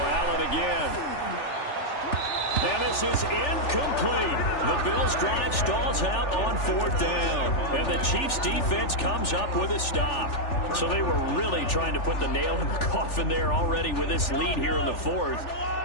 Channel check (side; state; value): right; late; 3.4 ms